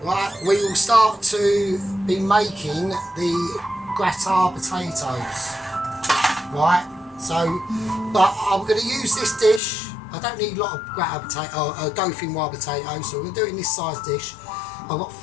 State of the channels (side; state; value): right; drops out; at 9.6 s